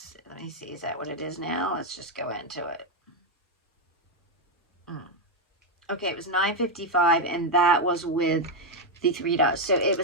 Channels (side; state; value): both; normal; correlation 0.03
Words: let me see. Is that what it is now? Let's just go into it. Okay, it was $9.55, and that was with the $3. So it